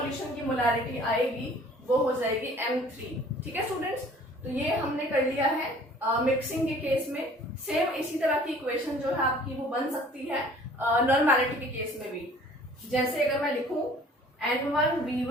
की मोलैरिटी आएगी वो हो जाएगी M3। ठीक है स्टूडेंट्स, तो ये हमने कर लिया है मिक्सिंग के केस में। सेम इसी तरह की इक्वेशन जो है आपकी वो बन सकती है नॉर्मेलिटी के केस में भी। जैसे अगर मैं लिखूं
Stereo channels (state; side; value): normal; both; correlation 0.51